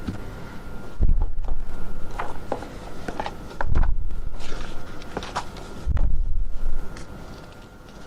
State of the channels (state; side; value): identical; both; correlation 1.00